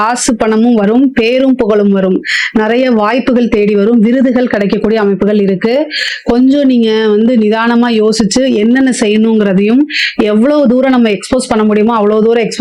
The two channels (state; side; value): identical; both; correlation 1.00